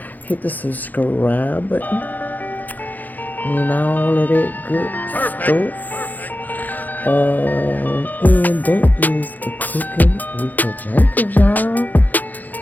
Hit the subscribe button and all of that good stuff. And that is the cooking with the Jacobs, y'all.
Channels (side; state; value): right; late; 0.083 ms